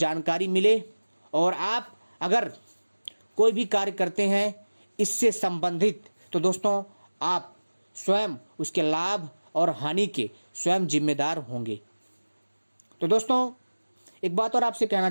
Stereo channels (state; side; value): inverted; both; correlation -1.00